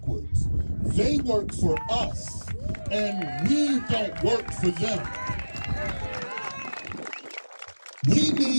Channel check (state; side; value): inverted; both; correlation -1.00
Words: They work for us, and we don't work for them. We